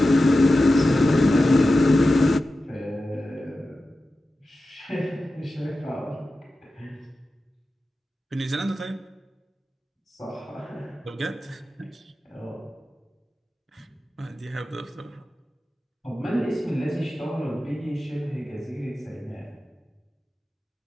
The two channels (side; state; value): both; normal; correlation 0.93